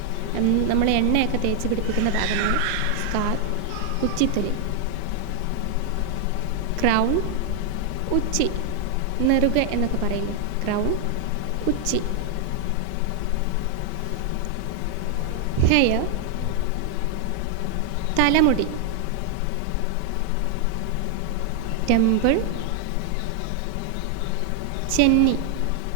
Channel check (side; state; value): both; different; correlation 0.00